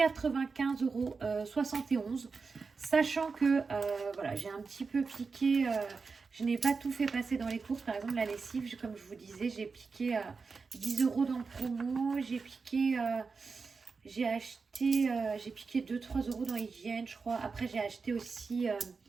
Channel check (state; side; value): quieter; left; 4.7 dB